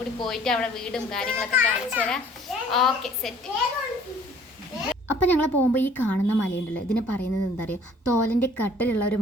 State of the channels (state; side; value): normal; both; correlation 0.55